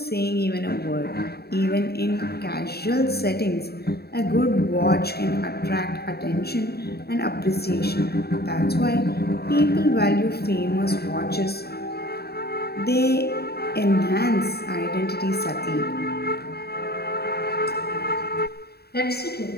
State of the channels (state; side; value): late; right; 0.46 ms